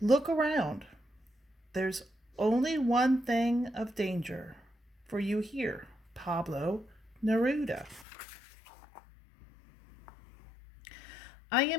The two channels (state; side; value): drops out; right; at 8.1 s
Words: around. There's only one thing of danger for you here, Pablo Neruda. I